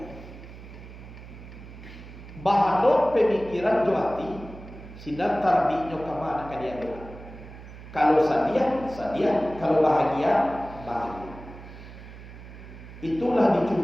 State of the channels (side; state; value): right; noise; hum, 15 dB below the sound